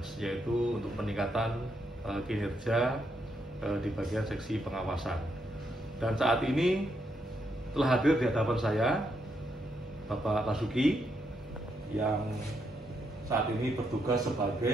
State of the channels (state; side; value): normal; both; correlation 0.79